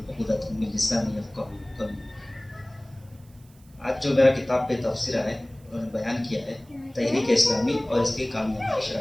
عقدۃ من لسانی یفقہوا قولی۔ آج جو میرا کتاب پہ تبصرہ ہے، انہوں نے بیان کیا ہے تحریک اسلامی اور اس کی کامیابی کی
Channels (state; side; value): noise; right; hiss, 29 dB below the sound